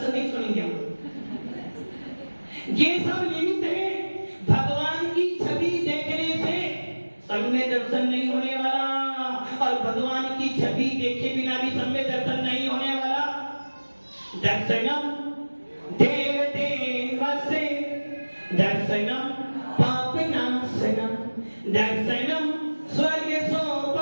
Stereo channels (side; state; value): both; inverted; correlation -1.00